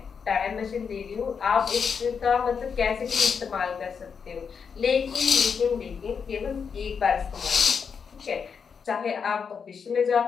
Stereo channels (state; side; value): quieter; right; 6.3 dB